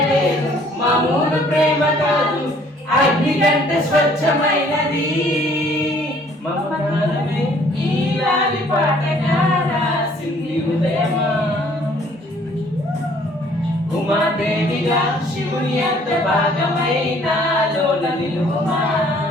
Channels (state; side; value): normal; both; correlation 0.59